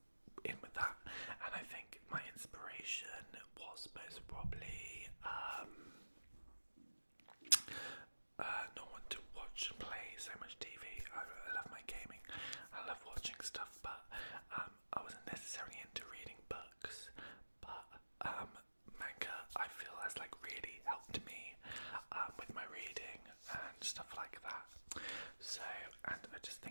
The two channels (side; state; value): both; inverted; correlation -1.00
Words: in with that. And I think my inspiration was most probably not want to watch and play so much TV. I love my gaming. I love watching stuff, but I wasn't necessarily into reading books. But manga, I feel, has like really helped me with my reading and stuff like that. So, and I just